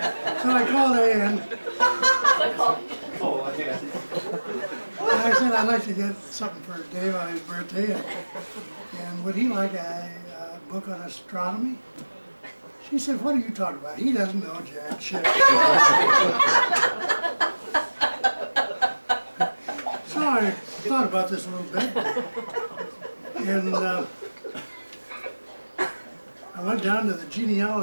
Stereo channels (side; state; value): both; inverted; correlation -1.00